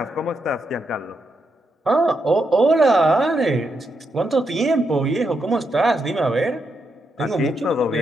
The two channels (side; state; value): both; normal; correlation 0.82